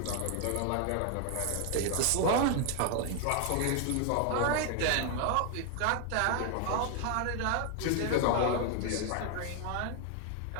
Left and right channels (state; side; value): different; both; correlation 0.00